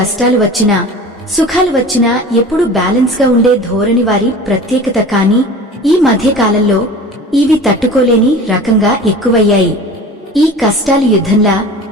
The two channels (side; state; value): both; normal; correlation 0.39